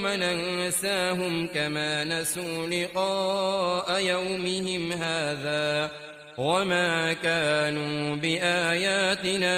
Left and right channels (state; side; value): identical; both; correlation 1.00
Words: ننساهم كما نسوا لقاء يومهم هذا وما كانوا